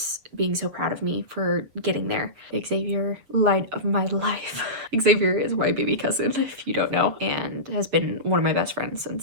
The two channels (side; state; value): left; late; 7.6 ms